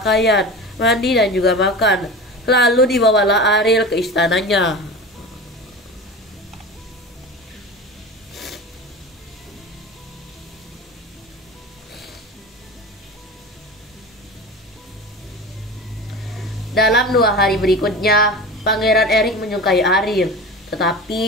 mandi dan juga makan. Lalu dibawalah Ariel ke istananya. Dalam 2 hari berikutnya, Pangeran Erik menyukai Ariel,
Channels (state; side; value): normal; both; correlation 0.31